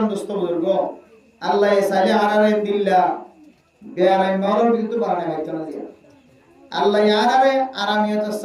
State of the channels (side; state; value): both; identical; correlation 1.00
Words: दोस्तों बुजुर्गो अल्लाह ये साले आरारे दिल्ला बेआराम मारो बिल्कुल बारने है तो ना दिया अल्लाह ये आरारे आरामियत